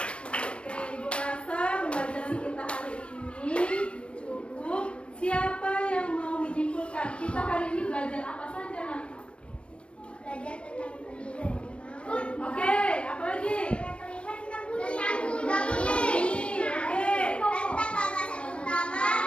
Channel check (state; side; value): late; right; 0.059 ms